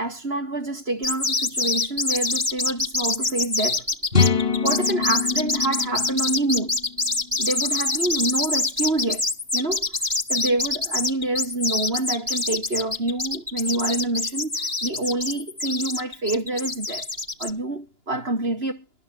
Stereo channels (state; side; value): late; left; 2.9 ms